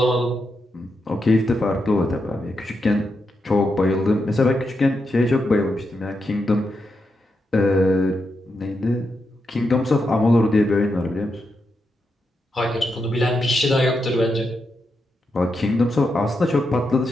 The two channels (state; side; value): normal; both; correlation 0.85